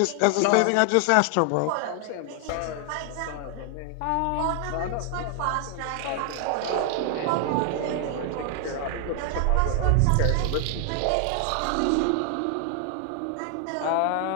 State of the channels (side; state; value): both; different; correlation 0.00